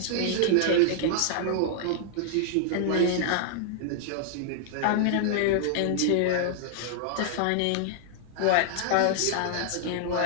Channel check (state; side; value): different; both; correlation -0.01